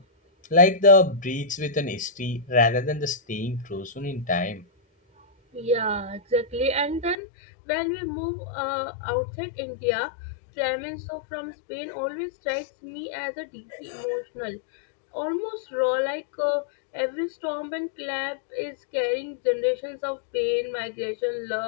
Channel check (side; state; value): right; drops out; at 7.2 s